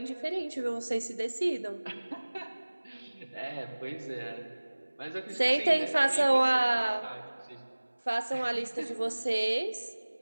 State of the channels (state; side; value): inverted; both; correlation -1.00